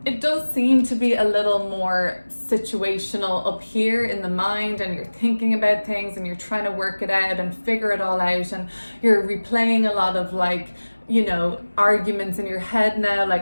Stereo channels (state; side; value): inverted; both; correlation -1.00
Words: it does seem to be a little more situational up here in the mind, and you're thinking about things and you're trying to work it out and figure it all out, and you're replaying a lot of like, you know, arguments in your head now,